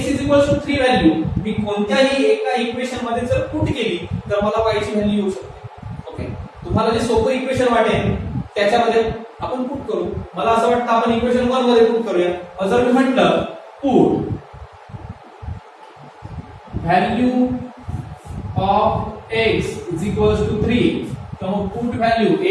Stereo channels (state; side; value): identical; both; correlation 1.00